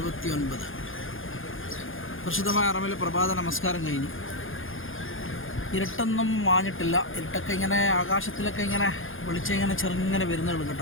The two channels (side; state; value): right; late; 0.59 ms